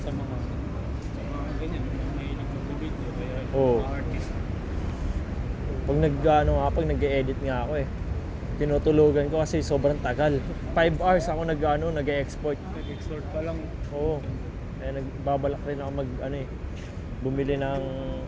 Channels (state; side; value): identical; both; correlation 1.00